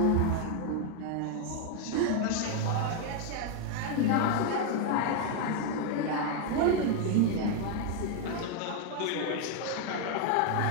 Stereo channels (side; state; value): both; different; correlation 0.01